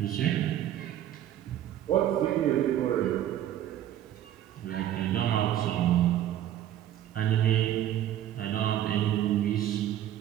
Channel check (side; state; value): left; quieter; 11.8 dB